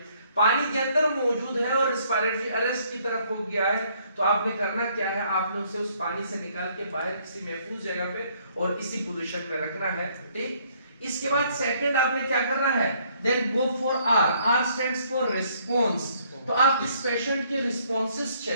पानी के अंदर मौजूद है और रेस्पिरेटरी अरेस्ट की तरफ हो गया है, तो आपने करना क्या है, आपने उसे उस पानी से निकाल के बाहर किसी महफूज जगह पे और इसी पोजीशन में रखना है। ठीक, इसके बाद सेकंड आपने क्या करना है, then go for R। R stands for response. तो आप इस पेशेंट के रिस्पॉन्सेस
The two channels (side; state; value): both; inverted; correlation -0.66